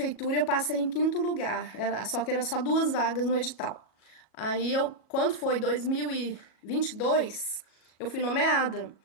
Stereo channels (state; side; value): late; right; 37 ms